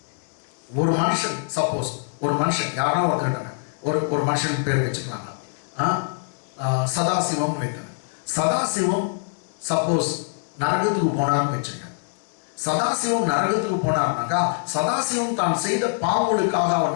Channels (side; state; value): right; silent; digital silence